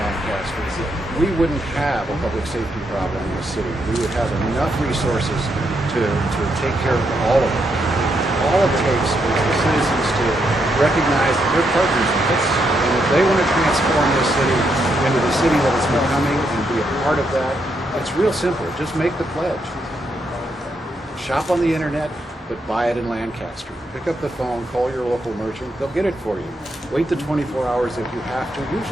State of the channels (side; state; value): both; normal; correlation 0.79